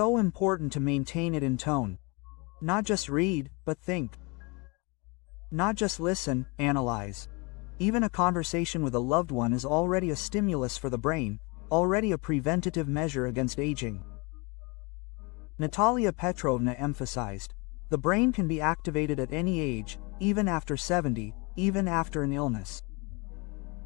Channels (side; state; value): right; quieter; 28.9 dB